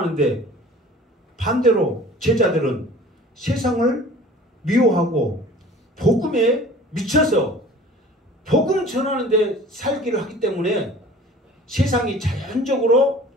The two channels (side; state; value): both; normal; correlation 0.45